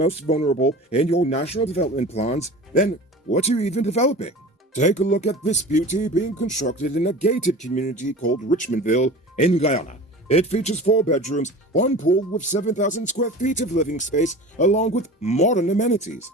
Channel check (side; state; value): both; normal; correlation 0.37